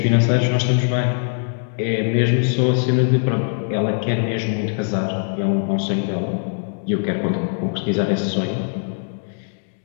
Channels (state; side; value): silent; right; digital silence